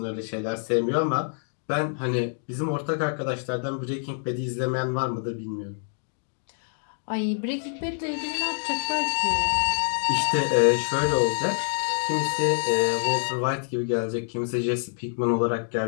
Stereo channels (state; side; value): silent; right; digital silence